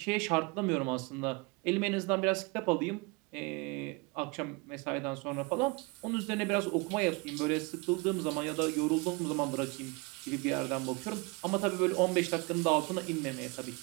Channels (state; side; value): quieter; left; 28.2 dB